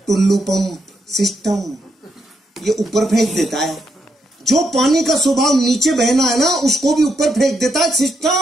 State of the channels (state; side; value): normal; both; correlation 0.80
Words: टुल्लू पंप सिस्टम, ये ऊपर फेंक देता है। जो पानी का स्वभाव नीचे बहना है ना, उसको भी ऊपर फेंक देता है